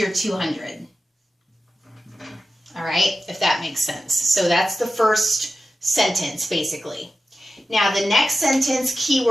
200. All right, if that makes sense. So that's the first sentence, basically. Now the next sentence,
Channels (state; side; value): normal; both; correlation 0.92